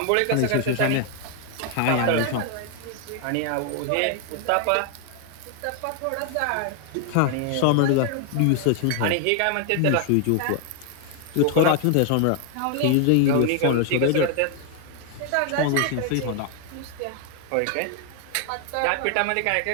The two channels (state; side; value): different; both; correlation 0.00